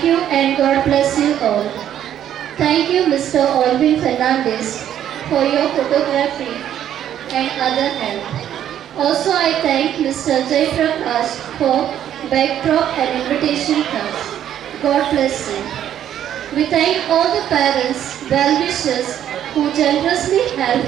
you and God bless you all. Thank you Mr. Alvin Fernandez for your photography and other help. Also, I thank Mr. Jay Prakash for backdrop and invitation cards. God bless you. We thank all the parents, well-wishers who generously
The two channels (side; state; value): left; quieter; 10.6 dB